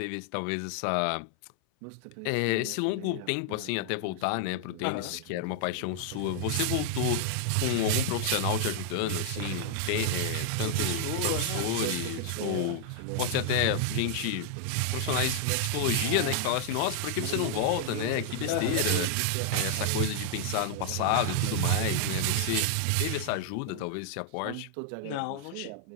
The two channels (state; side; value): different; both; correlation 0.00